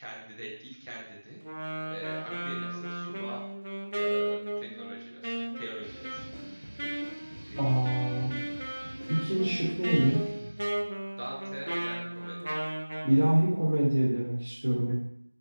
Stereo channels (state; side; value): inverted; both; correlation -1.00